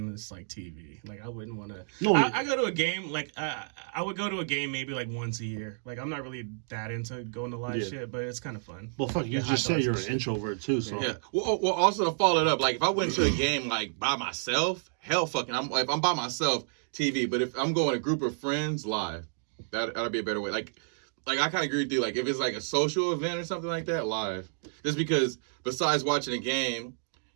it's, like, TV. Like, I wouldn't want to... No, I go to a game, like, I would go to a game maybe, like, once a year. Like, I'm not really that into going to live Yeah. shit, but it's kind of fun. well, fuck, you Yeah, just hot said dogs you're and an shit. introvert too, so Yeah. Well, also to follow it up, like if I went to a game like by myself, hell fucking, if I'm by myself, TV. But if I'm going with a group of friends, live. That'd be a better way. Like I kind of agree with you. Like if it's like a social event or something like that, live. Just because besides watching a game,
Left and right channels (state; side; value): silent; left; digital silence